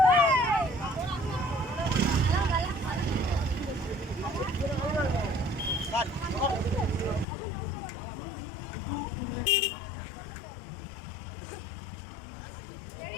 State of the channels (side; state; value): right; drops out; at 7.2 s